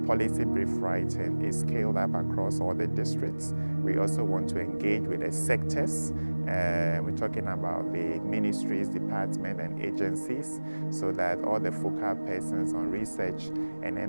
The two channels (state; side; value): inverted; both; correlation -1.00